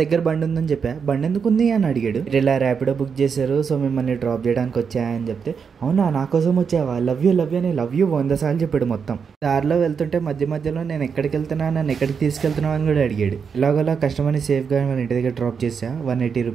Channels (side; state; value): left; quieter; 6.3 dB